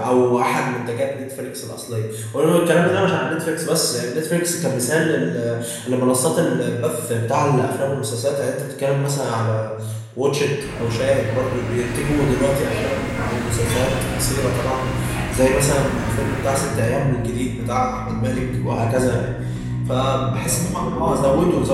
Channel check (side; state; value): both; identical; correlation 1.00